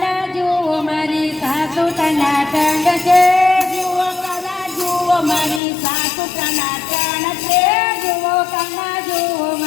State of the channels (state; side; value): drops out; right; at 5.6 s